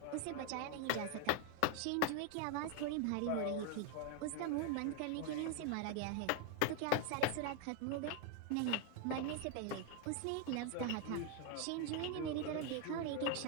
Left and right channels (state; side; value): different; both; correlation 0.01